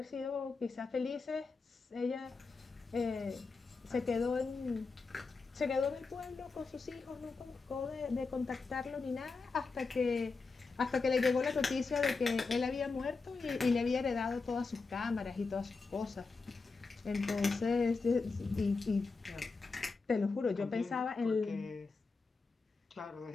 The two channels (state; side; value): quieter; right; 4.2 dB